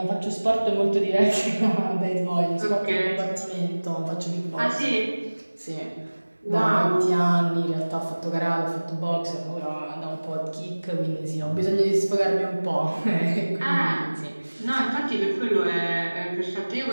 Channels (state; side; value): inverted; both; correlation -1.00